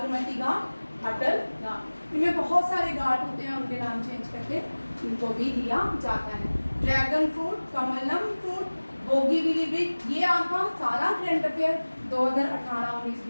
घाट, अटल घाट, इनमें बहुत सारे घाट होते हैं, उनके नाम चेंज करके इनको भी दिया जाता है। Dragon fruit, Kamalam fruit, Bogibeel bridge, ये आपका सारा करंट अफेयर 2018, 19,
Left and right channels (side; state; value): both; inverted; correlation -1.00